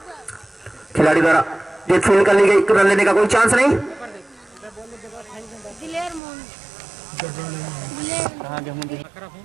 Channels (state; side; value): drops out; left; at 6.2 s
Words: खिलाड़ी द्वारा गेंद फील्ड कर ली गई, रन लेने का कोई चांस नहीं।